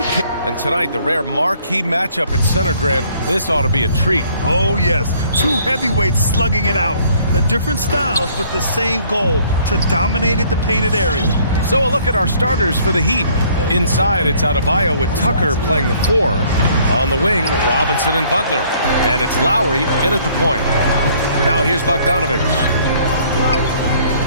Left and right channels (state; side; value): inverted; both; correlation -0.60